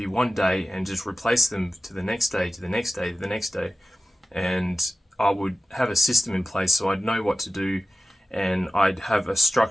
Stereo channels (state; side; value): normal; both; correlation 0.95